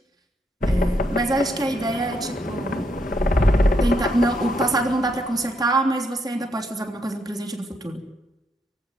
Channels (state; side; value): normal; both; correlation 0.76